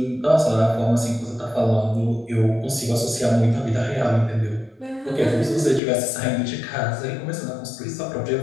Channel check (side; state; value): right; drops out; at 5.8 s